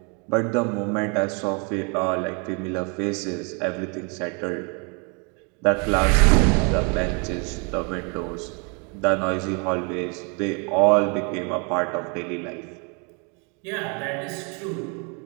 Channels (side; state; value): left; quieter; 34.8 dB